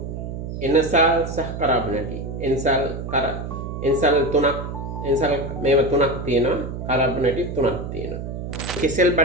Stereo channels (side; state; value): right; noise; hum, 7 dB below the sound